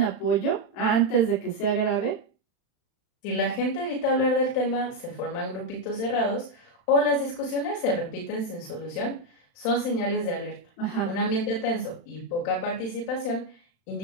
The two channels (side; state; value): right; late; 35 ms